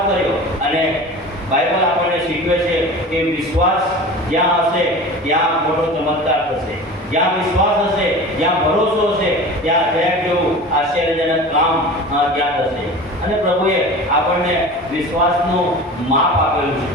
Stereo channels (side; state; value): both; normal; correlation 0.36